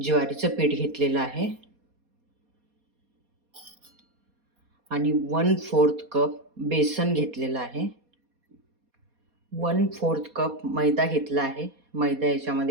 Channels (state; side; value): late; left; 4.2 ms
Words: ज्वारीचं पीठ घेतलेलं आहे आणि 1/4 कप बेसन घेतलेलं आहे. 1/4 कप मैदा घेतला आहे. मैदा